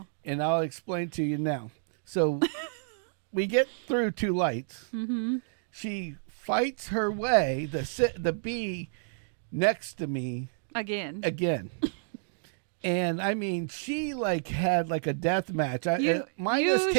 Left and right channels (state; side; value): silent; left; digital silence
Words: And I'll explain to you now. So... we get through 2 lights. Mm-hmm. She fights her way, the bee next to me. Again. And I mean, she like had like a death match. You